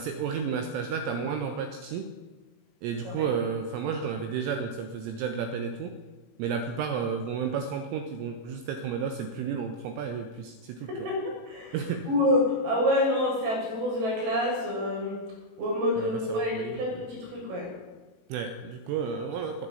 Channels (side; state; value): left; late; 18 ms